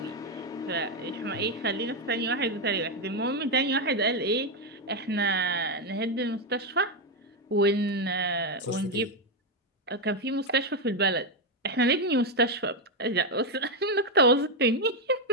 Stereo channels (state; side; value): normal; both; correlation 0.04